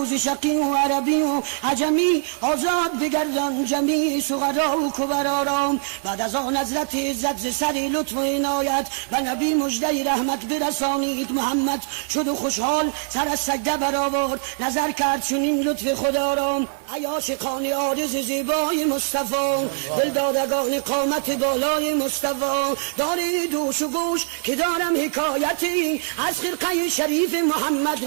و ز شقی و عربی و عجمی آزاد بگردم. بودن جمیع سغرا و کبرارام. بعد از آن حضرت عزت ز سری لطف و عنایت و نبی مژده رحمت برسانید. محمد شد و خوشحال سر از سجده برآورد، نظر کرد چنین لطف خدا را. ای عاشقان عارض زیبای مصطفی، دلدادگان قامت بالای مصطفی، دارید دوش و گوش که دارم حکایتی از خرقه شریف محمد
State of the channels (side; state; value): left; silent; digital silence